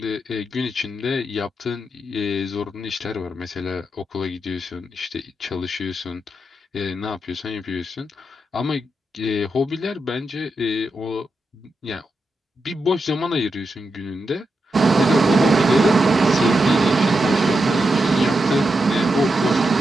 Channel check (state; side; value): normal; both; correlation 0.86